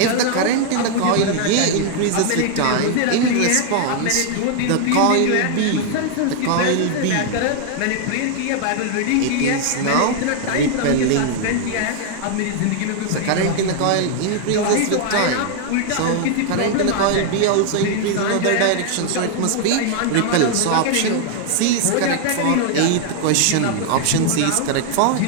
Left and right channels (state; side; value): different; both; correlation 0.00